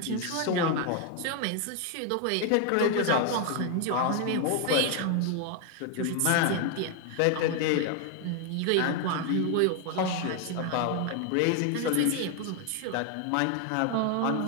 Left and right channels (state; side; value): different; both; correlation 0.01